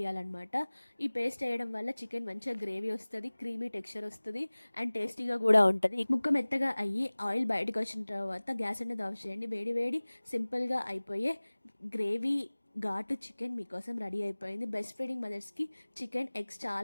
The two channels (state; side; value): inverted; both; correlation -1.00